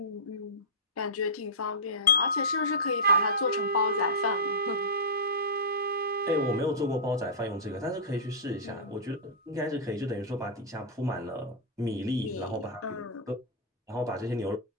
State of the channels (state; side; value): normal; both; correlation -0.13